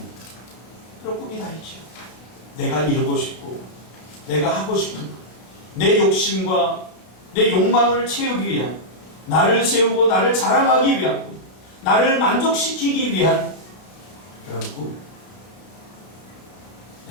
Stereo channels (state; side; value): late; right; 32 ms